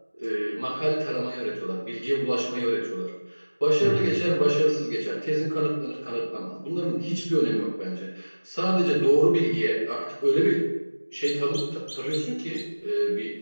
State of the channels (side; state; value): both; inverted; correlation -1.00